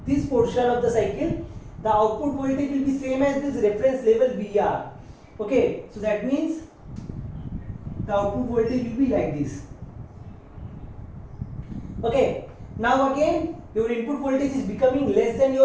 this portion of the cycle, the output voltage will be same as this reference level VR. Okay, so that means the output voltage will be like this. Okay, now again your input voltage is becoming less than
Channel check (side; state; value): both; identical; correlation 1.00